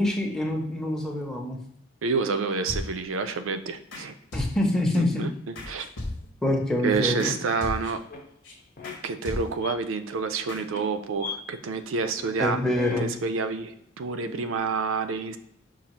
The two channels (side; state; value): both; normal; correlation 0.38